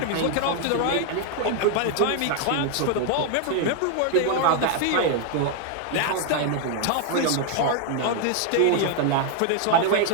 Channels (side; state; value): both; different; correlation 0.00